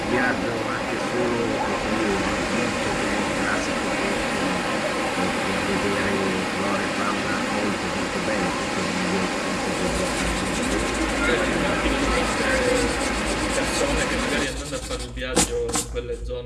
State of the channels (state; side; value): identical; both; correlation 1.00